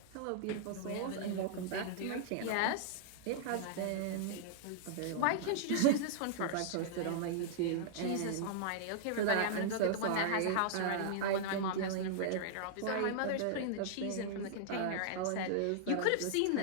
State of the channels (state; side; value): different; both; correlation -0.01